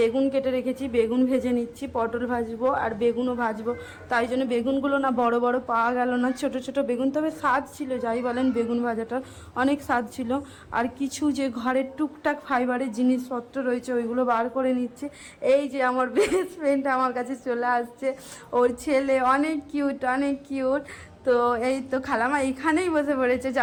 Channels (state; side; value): identical; both; correlation 1.00